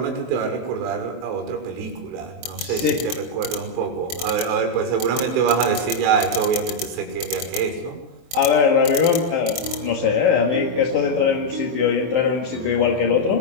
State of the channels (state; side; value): late; left; 23 ms